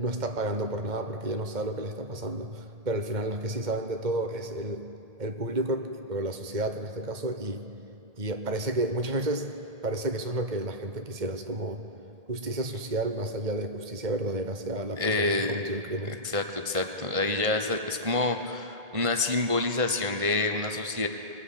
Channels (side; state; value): left; late; 1.5 ms